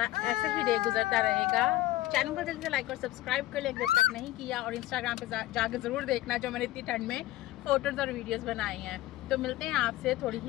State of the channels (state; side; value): quieter; right; 16.2 dB